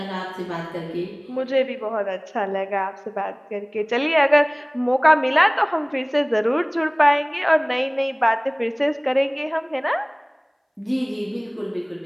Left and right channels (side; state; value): both; identical; correlation 1.00